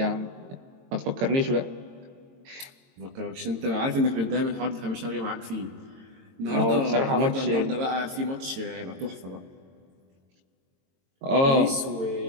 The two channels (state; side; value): late; left; 22 ms